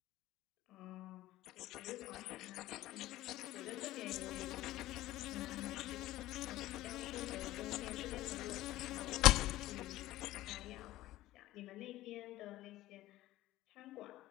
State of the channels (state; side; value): quieter; right; 16.0 dB